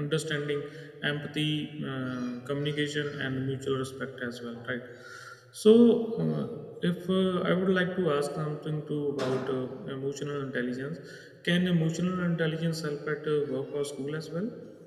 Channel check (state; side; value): identical; both; correlation 1.00